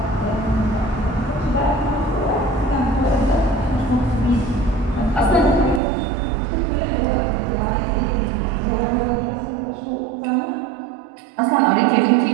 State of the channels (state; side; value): drops out; left; at 5.8 s